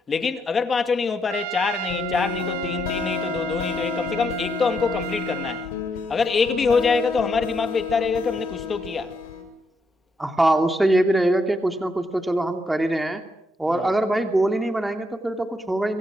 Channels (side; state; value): both; normal; correlation 0.77